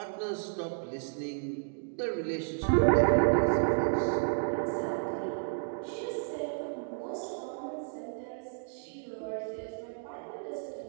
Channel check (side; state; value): left; silent; digital silence